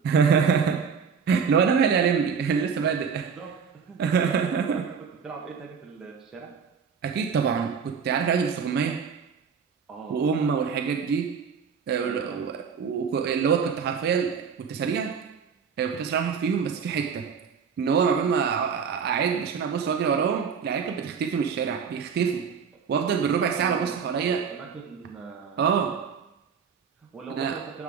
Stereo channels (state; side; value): quieter; left; 6.4 dB